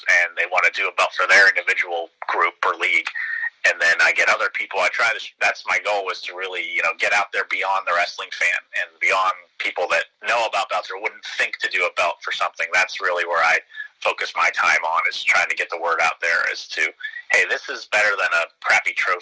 and they want to do a belt for their individual group or league. And then I get other people. That's my goal, is to really, get out there beyond the wrestling fan and beyond people that know about belts or wouldn't think to do a belt for something. That's really where I focus my time on, is trying to get the word out there as to, hey, this is better than a crappy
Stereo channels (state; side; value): identical; both; correlation 1.00